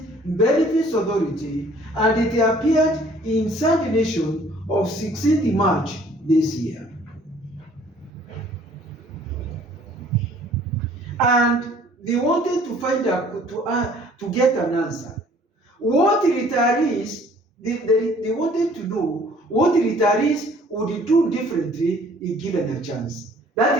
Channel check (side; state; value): both; normal; correlation 0.56